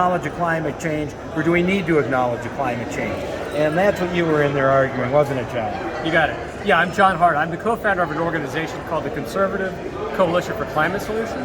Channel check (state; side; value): identical; both; correlation 1.00